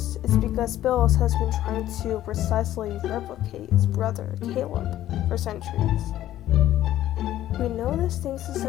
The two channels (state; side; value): quieter; right; 13.2 dB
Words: is because Bills has been trying to precisely replicate his brother, Caleb, for centuries. We know this thanks to